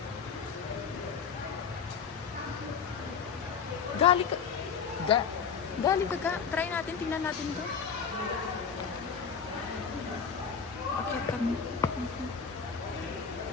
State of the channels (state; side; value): quieter; right; 6.4 dB